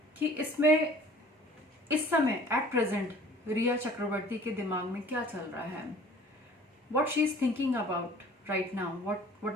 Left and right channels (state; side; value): normal; both; correlation 0.49